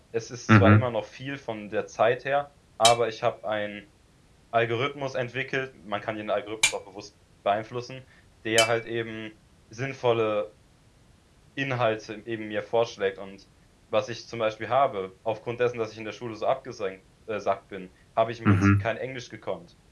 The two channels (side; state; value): both; identical; correlation 1.00